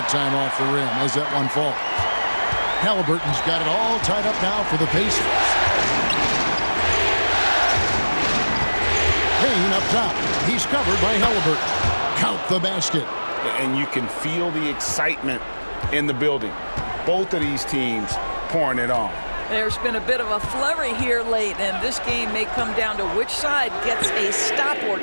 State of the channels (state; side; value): inverted; both; correlation -1.00